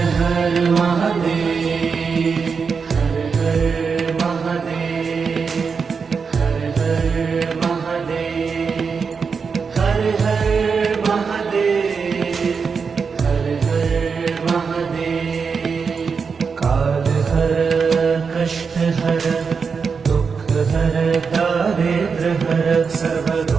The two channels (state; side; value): quieter; left; 5.5 dB